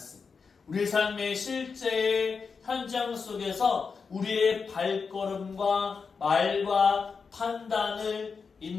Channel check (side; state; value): right; quieter; 5.3 dB